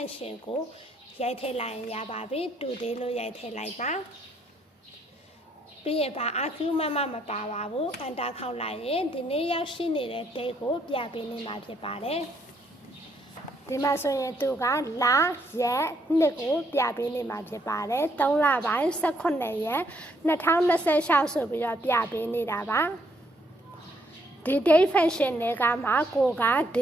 ကိုရိုက်ထည့်လိုက်ရင်ရပါပြီ Today လို့ရိုက်ထည့်လိုက်ပါပြီးရင်ပါ argument မပါပါဘူး enter ခေါက်လိုက်ရင်ဒီနေ့ရောက်ရှိနေတဲ့ Date ကိုပြပေးနေမှာဖြစ်ပါတယ်ဒီမှာဆိုရင်သူကလာရက်နှစ်ကိုပြပေးနေမှာဖြစ်ပါတယ်3လပိုင်း18ရက်2026ဆိုပြီးတော့ပြပေးနေတာပါဒီ Date Fashion တွေကမှကိုက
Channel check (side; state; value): both; normal; correlation 0.72